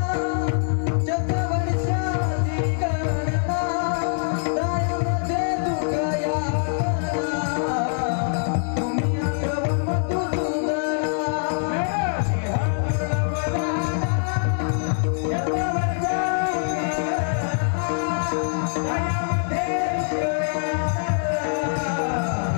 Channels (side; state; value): right; silent; digital silence